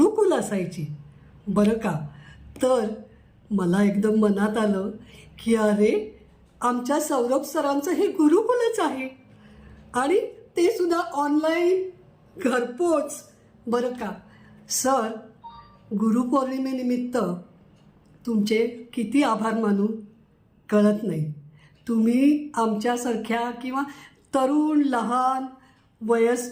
असायची बरं का. तर मला एकदम मनात आलं की अरे, आमच्या सौरभ सरांचं हे गुरुकुलच आहे आणि ते सुद्धा ऑनलाईन, घरपोच. बरं का सर, गुरुपौर्णिमेनिमित्त तुमचे किती आभार मानू कळत नाही. तुम्ही आमच्यासारख्या किंवा तरुण, लहान,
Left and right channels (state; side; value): identical; both; correlation 1.00